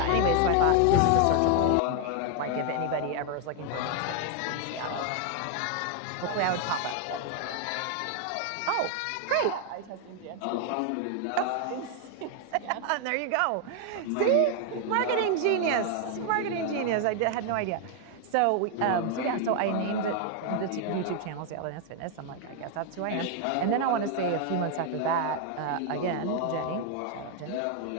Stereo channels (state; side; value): different; both; correlation 0.00